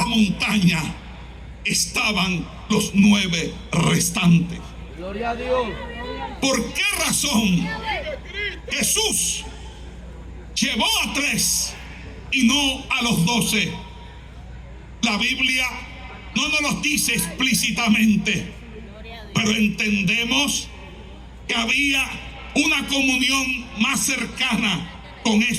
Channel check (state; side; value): identical; both; correlation 1.00